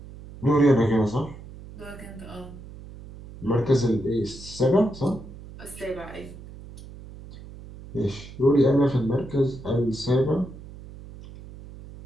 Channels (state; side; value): noise; right; hum, 16 dB below the sound